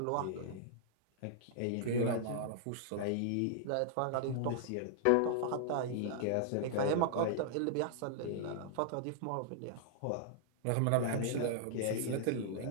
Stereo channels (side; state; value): both; different; correlation -0.01